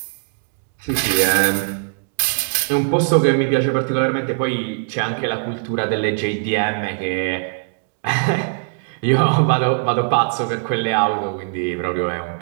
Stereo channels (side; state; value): left; silent; digital silence